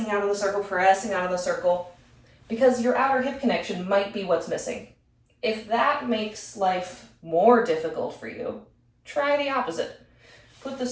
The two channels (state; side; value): identical; both; correlation 1.00